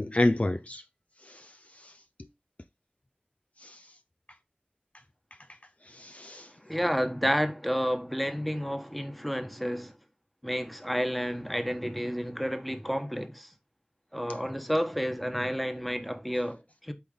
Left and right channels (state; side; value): normal; both; correlation 0.98